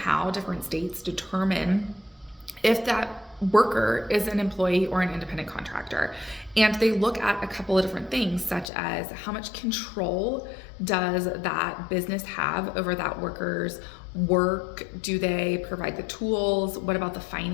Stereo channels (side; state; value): right; drops out; at 8.7 s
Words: different states determine if that worker is an employee or an independent contractor. And they look at a couple of different things, such as how much control does that business have over that worker's work? Do they provide the tools? What about the